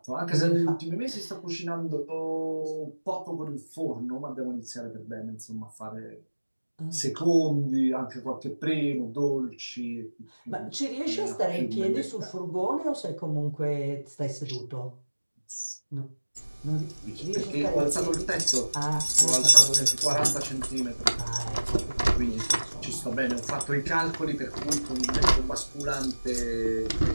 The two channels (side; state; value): both; inverted; correlation -1.00